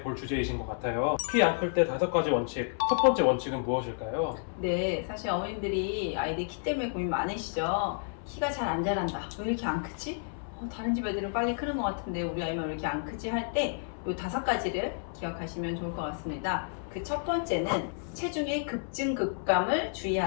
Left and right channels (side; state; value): right; silent; 57 dB below the other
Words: 볼 주제이신 것 같아요. 키 안 클 때 5가지 원칙. 첫 번째 원칙은 무엇일까요? 네, 사실 어머님들이 아이들 키 때문에 고민 많으시죠? 키가 잘 안 자란다. 왜 이렇게 안 크지? 다른 집 애들은 빨리 크는 것 같은데 우리 아이만 왜 이렇게 안 크지? 할 때 이 5가지를 기억하시면 좋을 것 같습니다. 그 첫 번째는 체중의 급증 급감을